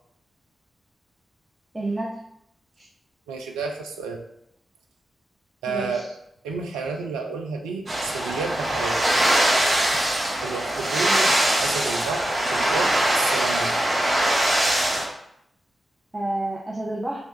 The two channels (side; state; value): both; normal; correlation 0.88